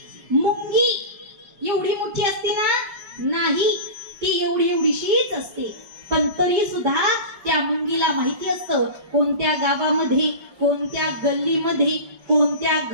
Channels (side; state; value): left; late; 5.0 ms